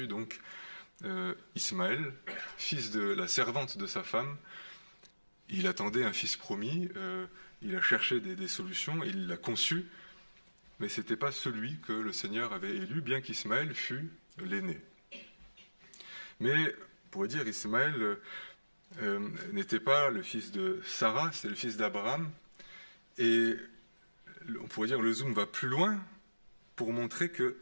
donc Ismaël, fils de la servante de sa femme. Il attendait un fils promis, il a cherché des solutions, il l'a conçu, mais ce n'était pas celui que le Seigneur avait élu, bien qu'Ismaël fût l'aîné. Mais, on pourrait dire, Ismaël n'était pas le fils de Sarah, c'est le fils d'Abraham, et on pourrait dire le zoom va plus loin pour montrer que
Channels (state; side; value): inverted; both; correlation -1.00